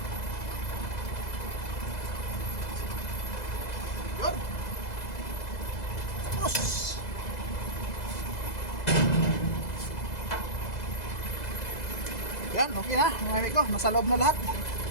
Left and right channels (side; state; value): right; late; 2.0 ms